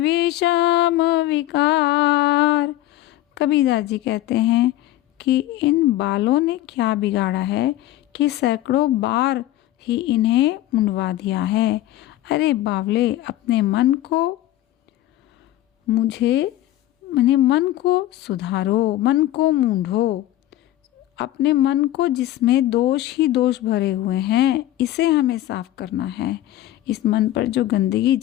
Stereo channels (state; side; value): quieter; right; 14.6 dB